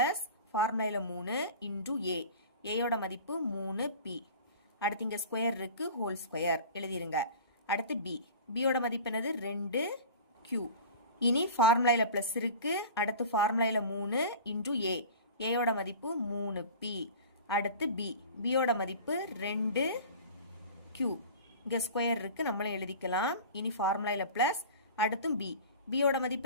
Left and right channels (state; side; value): inverted; both; correlation -0.38